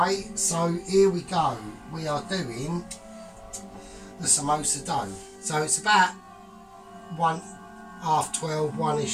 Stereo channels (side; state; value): both; identical; correlation 1.00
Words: So here we go. We are doing the samosa dough. So it's about 12:30,